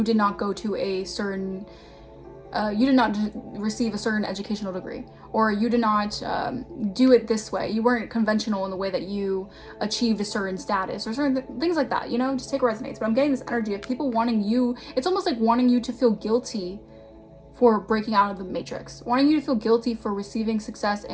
did not go to a certain, you did not receive a certain educational degree, or you did not do it this way. You weren't conventional in the way that you achieved a certain status or certain things like that, you know, just take what resonates. But I'm getting this energy of people wanting you, it's almost like wanting you to feel guilty for breaking out of the matrix, wanting you to feel guilty for receiving success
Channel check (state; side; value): identical; both; correlation 1.00